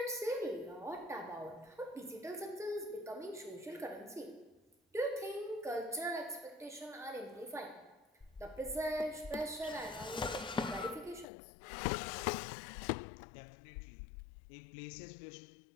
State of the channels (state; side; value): drops out; right; at 11.2 s